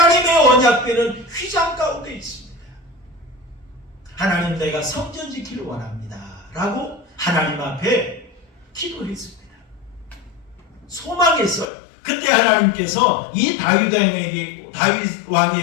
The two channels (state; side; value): drops out; right; at 11.7 s